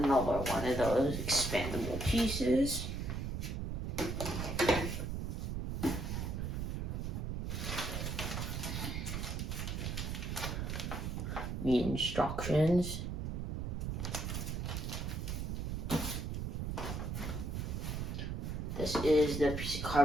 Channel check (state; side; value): noise; right; rumble, 3 dB below the sound